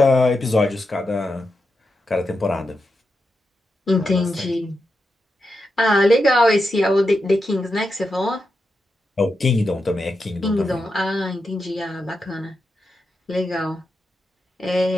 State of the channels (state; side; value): normal; both; correlation 0.87